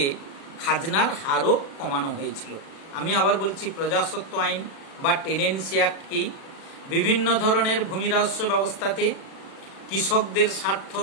খাজনার হারও কমানো হয়েছিল। আমি আবার বলছি, প্রজাস্বত্ব আইন বা টেনেন্সি অ্যাক্ট কি? বিভিন্ন ধরনের ভূমি রাজস্ব ব্যবস্থাতে কৃষকদের স্বার্থ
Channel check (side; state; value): right; late; 36 ms